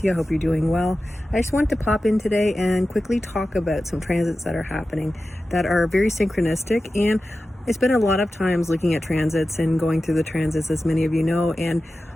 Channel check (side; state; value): both; normal; correlation 0.94